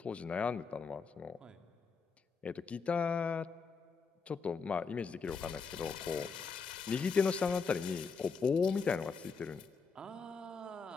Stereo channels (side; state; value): right; quieter; 5.2 dB